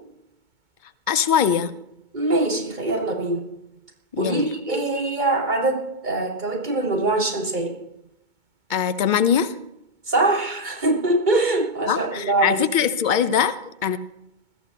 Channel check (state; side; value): late; left; 2.2 ms